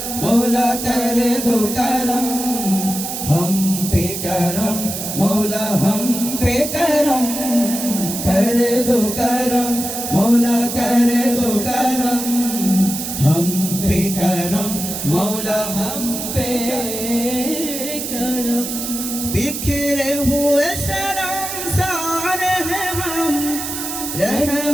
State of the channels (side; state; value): right; noise; hiss, 5 dB below the sound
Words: मौला कर दो करम हम पे करम मौला हम पे करम कर दो करम मौला कर दो करम हम पे करम मौला हम पे करम बिखरे हुए शर्मसार हैं हम